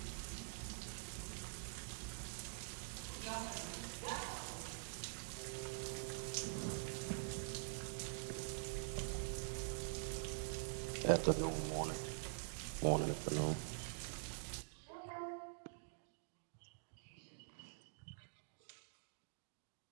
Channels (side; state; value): left; silent; digital silence